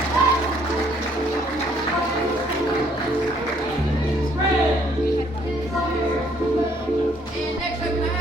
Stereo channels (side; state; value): both; normal; correlation 0.65